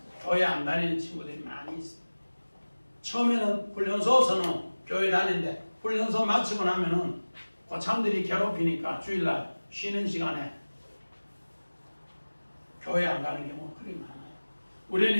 교회 안 다니는 친구들이 많이 있어요. 처음에는 훈련소에서는 교회 다니는데 훈련소 마치고 나면은 고참들이 괴롭히니까 주일날 쉬는 시간에 교회 안 가는 경우가 그리 많아요. 우리는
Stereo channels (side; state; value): both; inverted; correlation -1.00